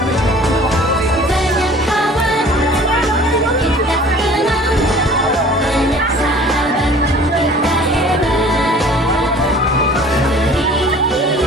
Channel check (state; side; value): normal; both; correlation 0.48